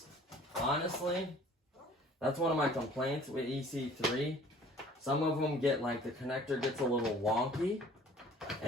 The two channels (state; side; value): normal; both; correlation 0.51